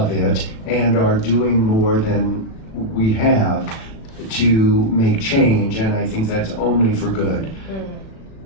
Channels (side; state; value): right; late; 36 ms